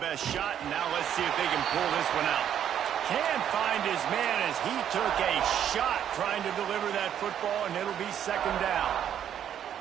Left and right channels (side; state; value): left; quieter; 9.7 dB